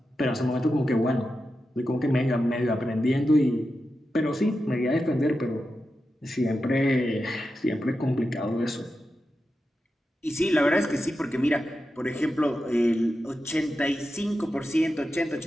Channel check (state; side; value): normal; both; correlation 0.90